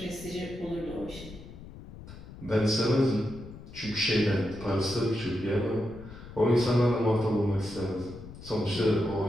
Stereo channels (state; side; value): noise; left; rumble, 15 dB below the sound